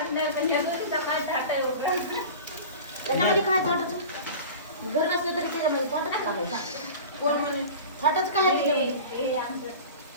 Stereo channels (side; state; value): both; inverted; correlation -0.36